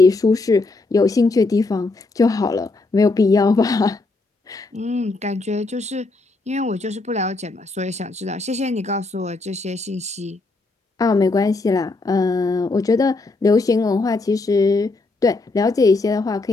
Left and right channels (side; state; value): right; quieter; 3.4 dB